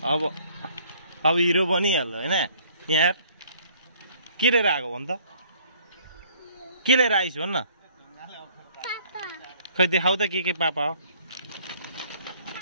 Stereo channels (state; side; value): inverted; both; correlation -0.58